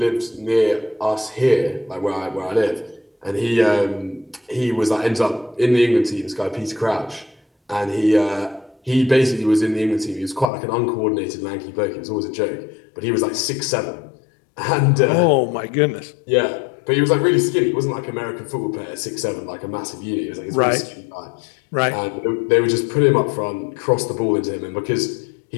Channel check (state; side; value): drops out; right; at 10.5 s